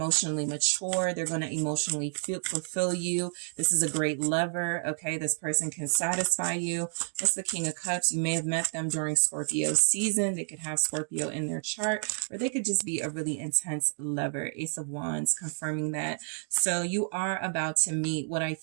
mature. They're going to emotionally fulfill you. This is a great lover. Okay. This person can satisfy you. What's the King of Cups? You may have met them during Scorpio season. They could have Scorpio in their chart, or they could just be a really intense lover. Ace of Wands confirming that. So you are about to meet what I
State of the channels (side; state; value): left; silent; 58 dB below the other